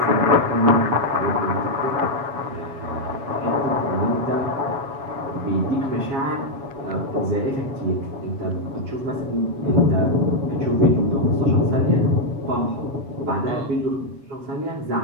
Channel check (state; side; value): late; left; 7.2 ms